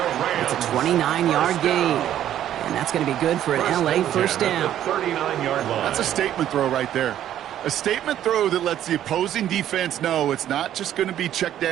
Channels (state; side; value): quieter; left; 11.4 dB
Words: It's a 29-yard gain. And that's going to be good for an LA first down. 39-yard line. That's a statement throw right there. A statement throw that lets the opposing defense know it's not just going to be check